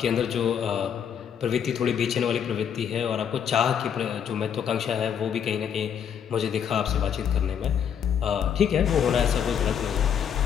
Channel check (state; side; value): quieter; right; 8.2 dB